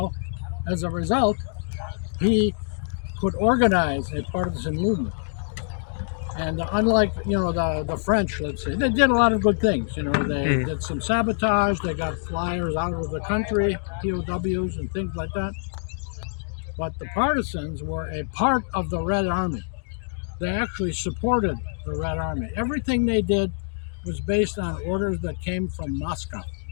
as a result, he could organize a partisan movement. And unlike, the French, let's say, they did a lot of good things. They did some sabotage, they got flyers out of the country, POWs and things like that. But the partisans were a part of the Red Army. They actually supported the Red Army. Everything they did was based on orders that came from Moscow,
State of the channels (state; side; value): silent; right; 62 dB below the other